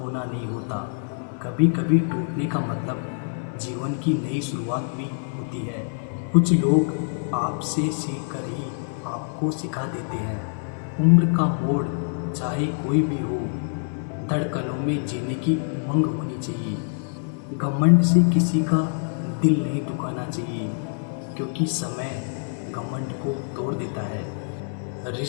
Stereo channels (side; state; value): right; silent; 60 dB below the other